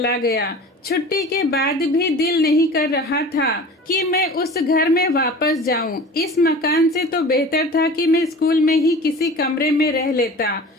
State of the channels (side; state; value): both; normal; correlation 0.39